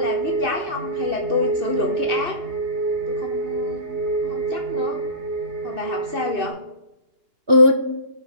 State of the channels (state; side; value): late; left; 2.9 ms